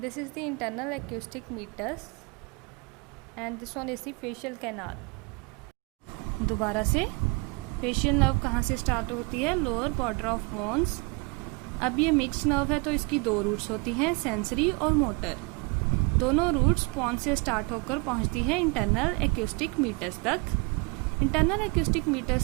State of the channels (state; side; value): quieter; left; 30.3 dB